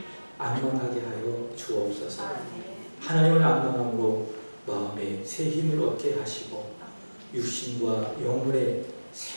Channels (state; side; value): inverted; both; correlation -1.00